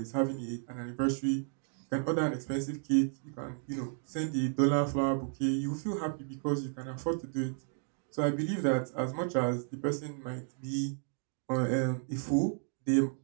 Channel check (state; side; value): silent; left; 56 dB below the other